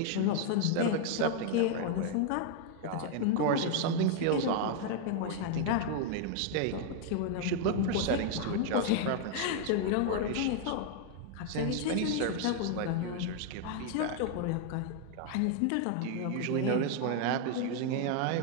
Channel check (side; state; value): both; different; correlation 0.00